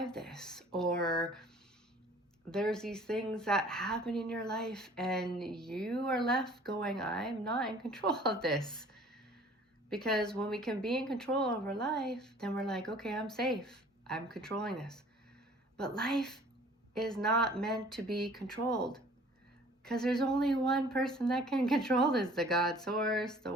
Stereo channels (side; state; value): both; normal; correlation 0.51